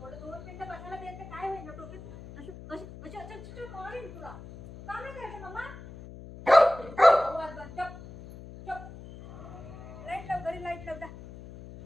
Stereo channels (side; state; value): left; noise; hum, 14 dB below the sound